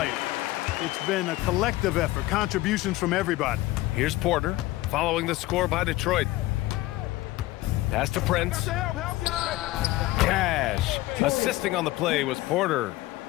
It's been a collective effort, contributions from everybody. Here's Porter, following the score by Detroit. Pass to Prince. Cash. Assisting on the play was Porter.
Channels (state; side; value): quieter; right; 17.7 dB